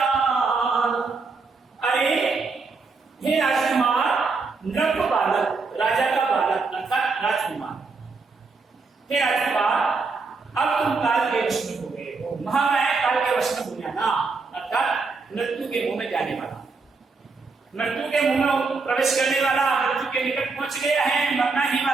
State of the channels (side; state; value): left; quieter; 4.3 dB